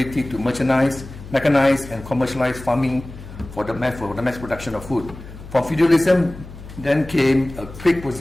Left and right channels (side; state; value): left; noise; hum, 15 dB below the sound